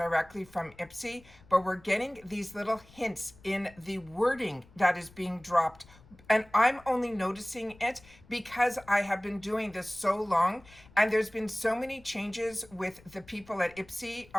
from IPSY, but we're getting these little hints in the wording that is being dropped, and I'm only noticing it because I have been doing this so long, and there's been so many changes with the people at IPSY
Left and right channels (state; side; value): noise; left; rumble, 25 dB below the sound